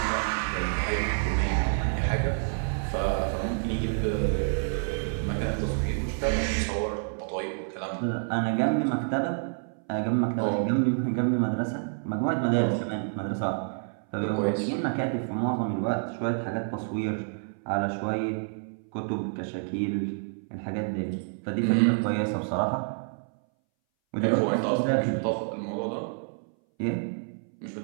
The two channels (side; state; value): left; silent; 59 dB below the other